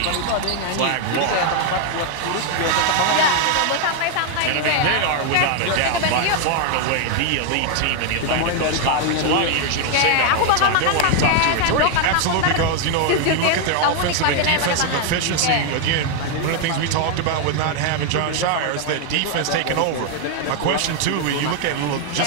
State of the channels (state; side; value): different; both; correlation 0.00